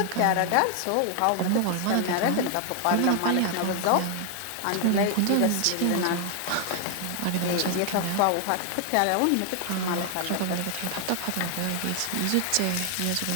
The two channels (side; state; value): both; different; correlation 0.00